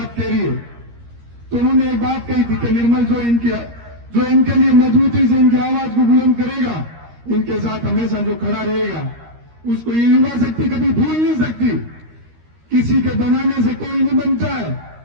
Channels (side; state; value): left; late; 13 ms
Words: कह रही है। तो उन्होंने एक बात कही थी कि निर्मल जो इनके लिए मजबूती से इनकी आवाज को बुलंद करेगा, इनके साथ हमेशा जो खड़ा रहेगा, उसको ये युवा शक्ति कभी भूल नहीं सकती। किसी के बनाने से कोई नहीं बनता है।